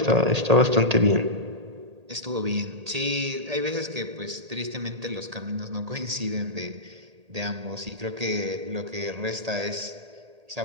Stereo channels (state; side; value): late; left; 1.8 ms